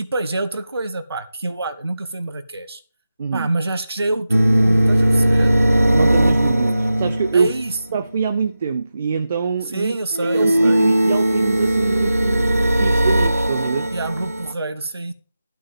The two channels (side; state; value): both; inverted; correlation -0.92